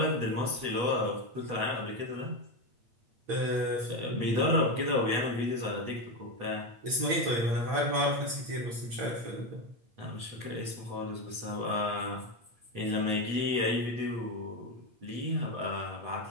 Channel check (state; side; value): late; left; 8.7 ms